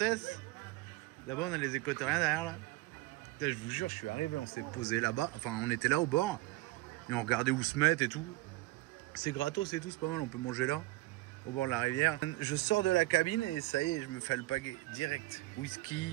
Là-bas, on a les Équatoriens derrière, là. Putain, je vous jure, je suis arrivé, on s'est posé là-bas. Enfin, on était là au bord. Et on regardait où se mettre et tout. C'est gratos et tout, c'est pas mal, on peut manger là, au bord de la rivière. Je sors de la cabine et ça y est, je me fais alpaguer direct.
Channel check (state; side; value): quieter; left; 19.5 dB